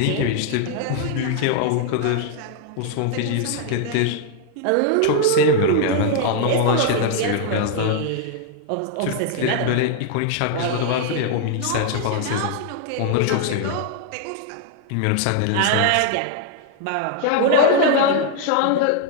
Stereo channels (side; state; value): both; different; correlation 0.00